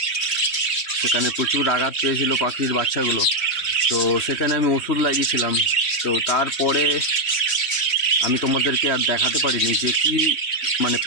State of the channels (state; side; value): late; right; 3.1 ms